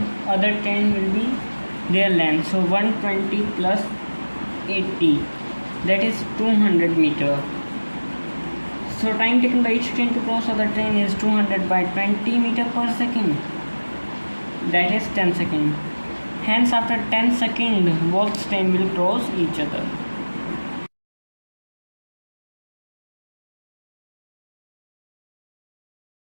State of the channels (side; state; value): both; inverted; correlation -1.00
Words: other train will be their length. So 120 plus 80, that is 200 meter. So time taken by each train to cross other train is 200 by 20 meter per second. That is 10 seconds. Hence after 10 seconds both train will cross each other.